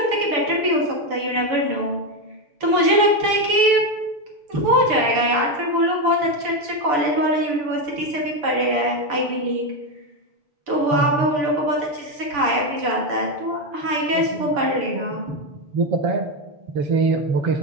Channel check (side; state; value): left; late; 6.9 ms